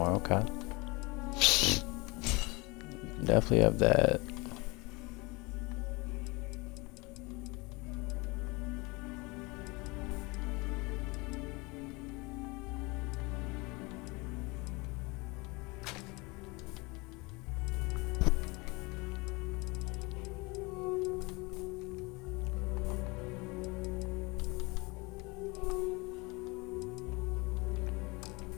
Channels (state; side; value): quieter; right; 25.9 dB